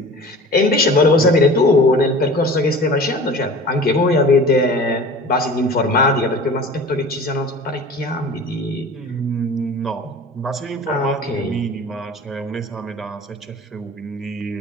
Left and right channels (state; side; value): normal; both; correlation 0.40